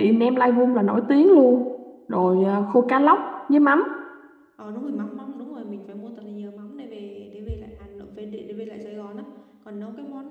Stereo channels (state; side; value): identical; both; correlation 1.00